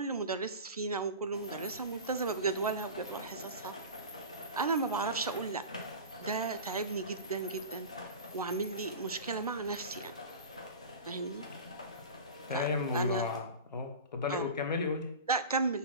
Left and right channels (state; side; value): inverted; both; correlation -0.31